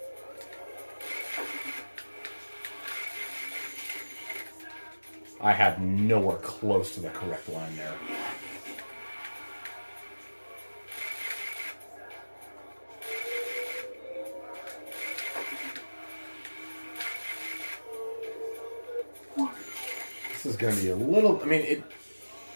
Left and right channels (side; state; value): both; inverted; correlation -1.00